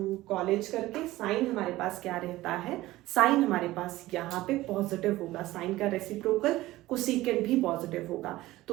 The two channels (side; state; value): left; quieter; 17.2 dB